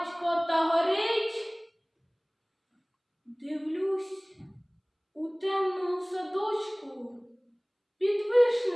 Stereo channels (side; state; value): both; identical; correlation 1.00